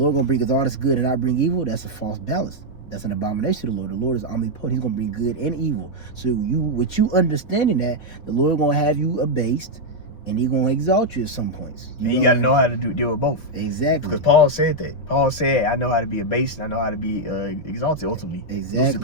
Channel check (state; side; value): late; right; 5.2 ms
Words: going to bring us all this good and not bring evil. That's a false balance. That's an abomination to the Lord. The Lord is omnipotent. He's going to bring good and evil. So with you understanding that, the Lord going to have you abased, and he's going to exalt you at some points. You got to know how to deal with both. Exactly. Because Paul said that. Paul said, I know how to be abased, and I know how to be exalted ultimately. Exactly. To